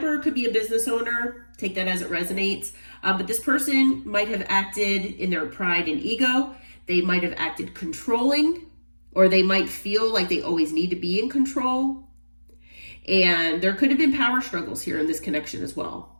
could be a business owner. Take that as it resonates. But this person might have acted in their pride and ego. They might have acted controlling, or they might feel like they always need to be in control. And there could have been power struggles here in this connection as well.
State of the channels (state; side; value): inverted; both; correlation -1.00